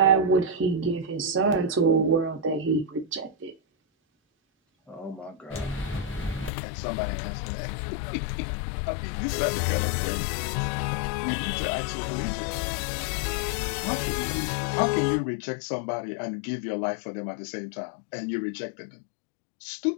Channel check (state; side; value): drops out; right; at 6.5 s